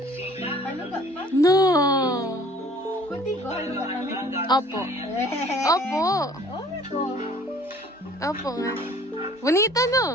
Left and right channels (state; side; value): normal; both; correlation 0.52